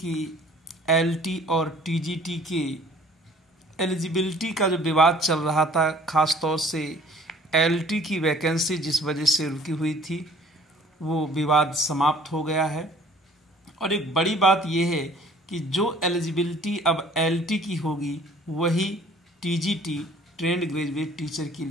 एलटी और टीजीटी के एलिजिबिलिटी का जो विवाद चल रहा था, खास तौर से एलटी की वैकेंसी जिस वजह से रुकी हुई थी, वो विवाद समाप्त हो गया है। और एक बड़ी बात यह है कि जो एलिजिबिलिटी अब एलटी की होगी वही टीजीटी ट्रेंड ग्रेजुएट टीचर के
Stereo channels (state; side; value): normal; both; correlation 0.54